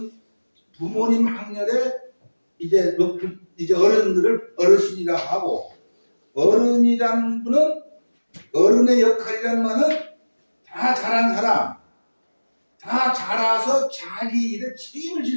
부모님 학렬에 이제 어른들을 어르신이라고 하고, 어른이라는 분은 어른의 역할이라는 말은 다 잘한 사람, 다 자라서 자기 일에 책임을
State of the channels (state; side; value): inverted; both; correlation -1.00